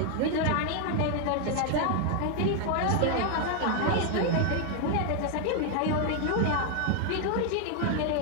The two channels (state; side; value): different; both; correlation 0.00